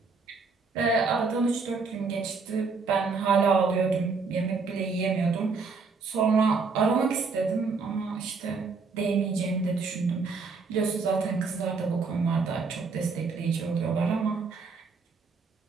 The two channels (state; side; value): quieter; left; 4.6 dB